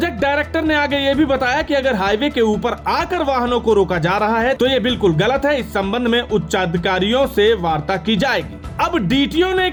डायरेक्टर ने आगे ये भी बताया कि अगर हाईवे के ऊपर आकर वाहनों को रोका जा रहा है तो ये बिल्कुल गलत है। इस संबंध में उच्चाधिकारियों से वार्ता की जाएगी। अब डीटीओ ने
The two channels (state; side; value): identical; both; correlation 1.00